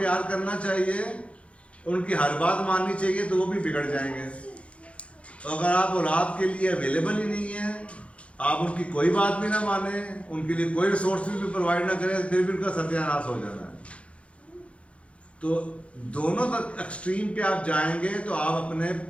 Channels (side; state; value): right; late; 0.062 ms